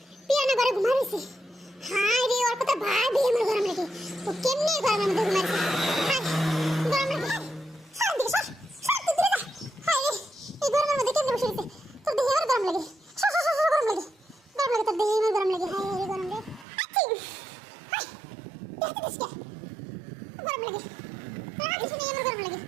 Piano ঘরে ঘুমাইছে। হায় রে ওর কথা ভাবি আমার গরম লাগে। তো কেমনে গরমের মধ্যে ঘুমাইছে? হায় গরম লাগে। সর দিকে সর, সর তুই দূরে যা। হায় রে এই গরমের মধ্যে কেমনে বসে রইছে? তোর দেহে আমার গরম লাগে। সর সর সর সর, গরম লাগে। গরম লাগে তোর দেহে আমার গরম লাগে। হায় রে গরম লাগে। আচ্ছা হায় দেখতে দিস কে? গরম লাগে। আর কিছু নেই আমার গরম লাগে।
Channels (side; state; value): left; drops out; at 16.7 s